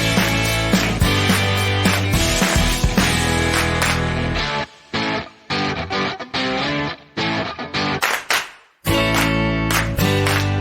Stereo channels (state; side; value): identical; both; correlation 1.00